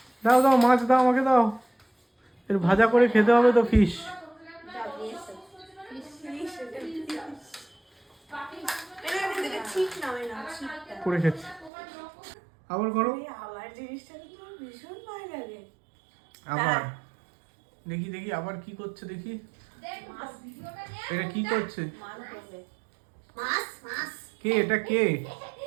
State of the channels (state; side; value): drops out; left; at 11.7 s